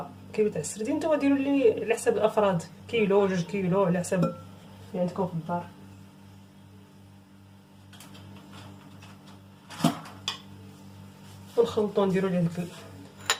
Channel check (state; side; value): identical; both; correlation 1.00